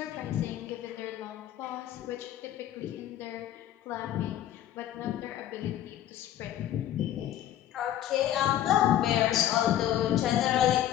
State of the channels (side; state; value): right; quieter; 11.9 dB